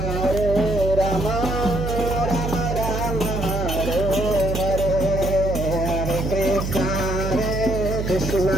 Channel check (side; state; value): right; noise; hum, 3 dB below the sound